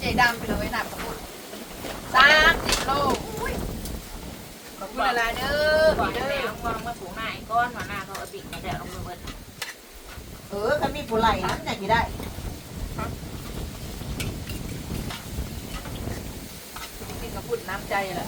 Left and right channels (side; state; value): both; identical; correlation 1.00